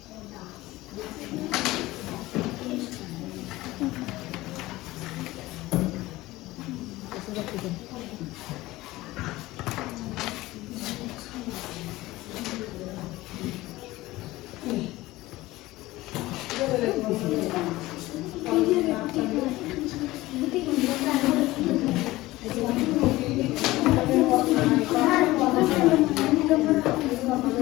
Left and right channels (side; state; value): right; quieter; 18.4 dB